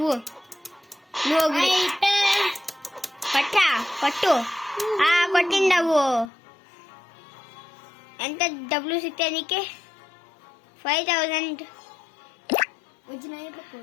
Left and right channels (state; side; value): drops out; right; at 6.2 s